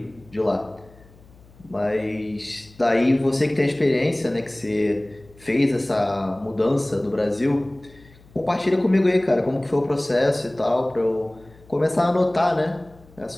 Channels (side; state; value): left; noise; hum, 26 dB below the sound